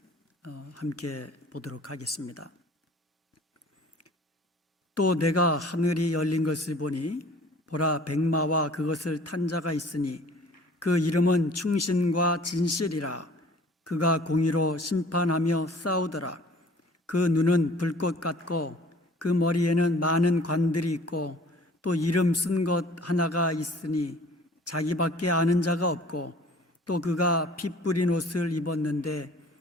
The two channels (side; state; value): both; normal; correlation 0.50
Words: 함께 보도록 하겠습니다. 또 내가 하늘이 열린 것을 보니 보라 백마와 그것을 탄 자가 있으니 그 이름은 충신과 진실이라. 그가 공의로 심판하며 싸우더라. 그 눈은 불꽃 같고 그 머리에는 많은 관들이 있고 또 이름 쓴 것 하나가 있으니 자기밖에 아는 자가 없고 또 그가 피 뿌린 옷을 입었는데